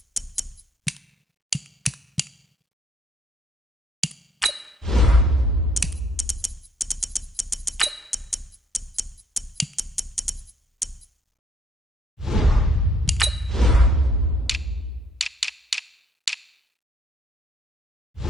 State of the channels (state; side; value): normal; both; correlation 0.65